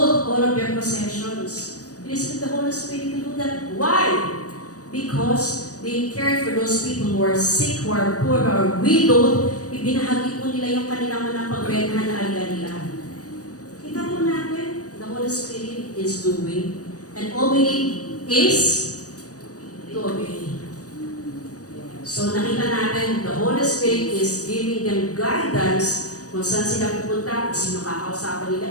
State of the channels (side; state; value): right; late; 0.67 ms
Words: all of their possessions. Because the Holy Spirit to do that. Why? Because they cared for those people who are sick, who are poor, who are widowed. Ibinahagi po nila yung kanilang mga pagbentahan na algalian. Kita po natin, the Holy Spirit is doing. And all we need is to obey. So nakita natin, the Holy Spirit is giving them guidance kung saan sila pupunta, kung sino kakausapan nila,